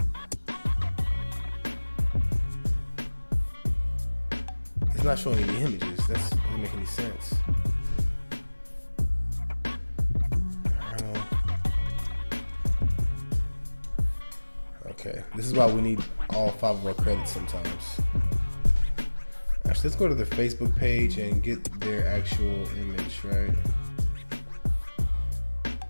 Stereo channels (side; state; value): both; inverted; correlation -1.00